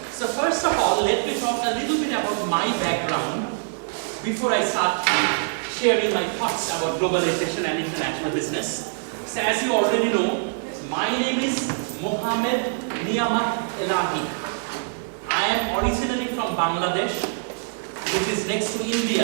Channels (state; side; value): silent; left; digital silence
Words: So first of all, let me talk a little bit about my background before I start sharing my thoughts about globalization and international business. So as you already know, my name is Mohammed Niyamat Elahi. I am originally from Bangladesh, which is next to